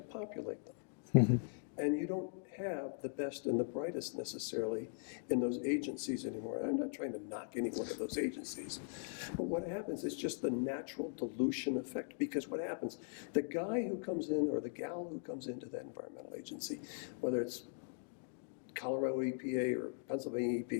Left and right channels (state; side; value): silent; right; digital silence